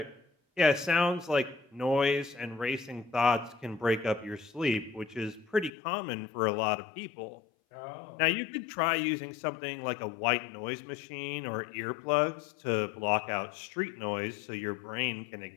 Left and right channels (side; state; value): right; drops out; at 5.7 s